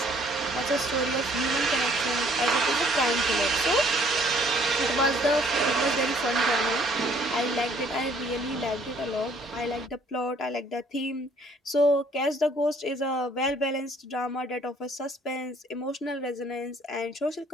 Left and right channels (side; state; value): both; normal; correlation 0.61